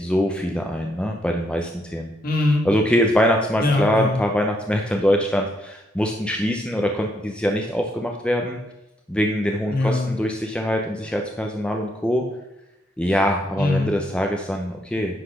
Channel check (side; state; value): both; normal; correlation 0.75